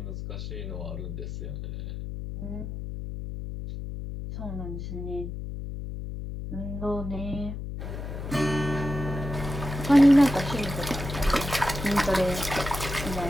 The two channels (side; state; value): left; noise; hum, 7 dB below the sound